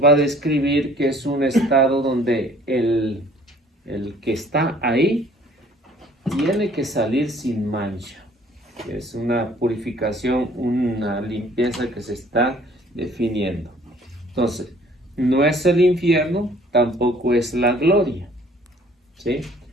va a describir que es un estado donde el que está ahí tiene que salir sin mancha. Es una purificación, una limpieza que se está definiendo. Entonces, no es el infierno, tampoco es la gloria, ¿sí?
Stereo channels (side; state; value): both; normal; correlation 0.56